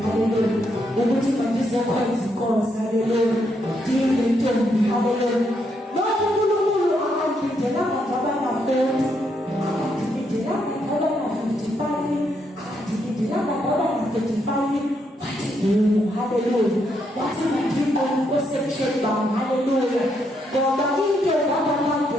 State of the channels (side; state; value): both; normal; correlation 0.77